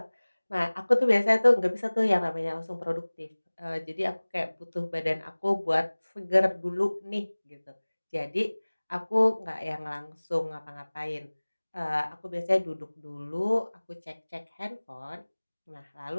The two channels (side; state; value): both; inverted; correlation -1.00